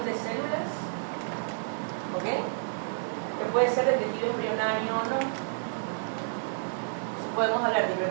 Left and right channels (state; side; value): silent; left; 56 dB below the other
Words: de células, ¿ok? Que puede ser de tejido embrionario o no. Entonces podemos hablar de